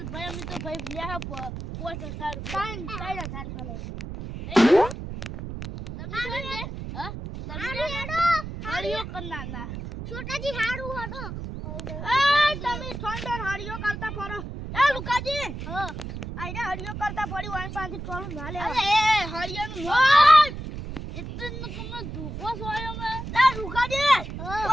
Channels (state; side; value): noise; right; rumble, 8 dB below the sound